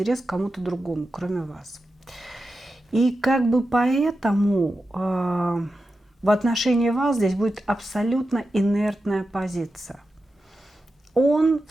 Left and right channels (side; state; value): both; normal; correlation 0.91